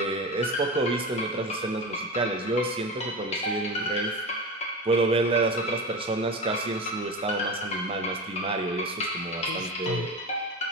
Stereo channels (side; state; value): both; normal; correlation 0.25